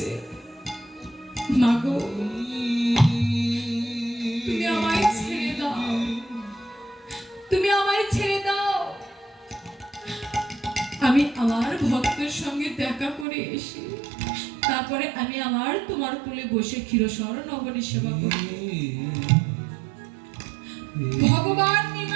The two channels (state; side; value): drops out; left; at 13.2 s